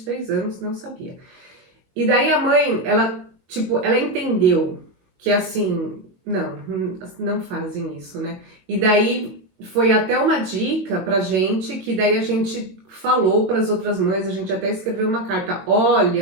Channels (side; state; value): left; late; 22 ms